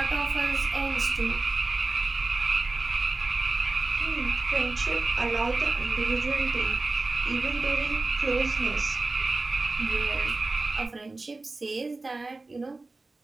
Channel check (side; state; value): left; quieter; 3.3 dB